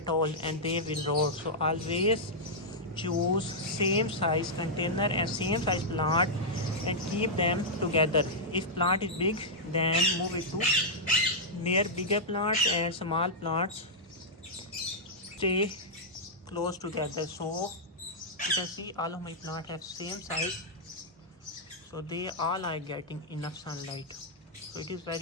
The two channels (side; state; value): both; normal; correlation -0.08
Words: all and they will rot. So always choose same size container and same size plant and keep them together. If plant is big, then move it to near bigger plants, and small plants stay close together. So you can see all of my plants have same size, so they all are getting enough sunlight. So it is